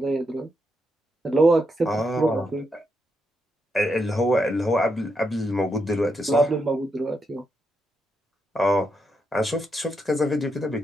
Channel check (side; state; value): both; normal; correlation 0.82